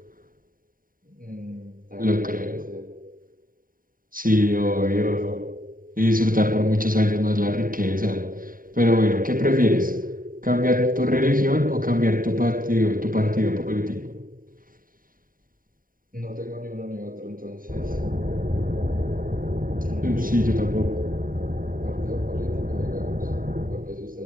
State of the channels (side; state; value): left; late; 0.41 ms